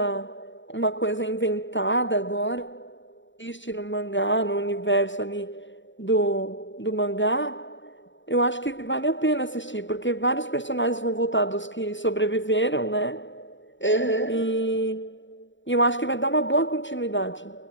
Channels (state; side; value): late; right; 0.54 ms